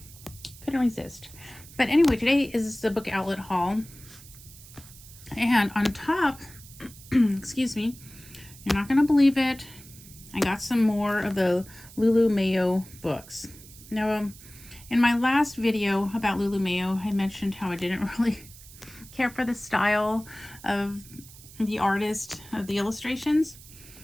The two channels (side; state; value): right; noise; hiss, 19 dB below the sound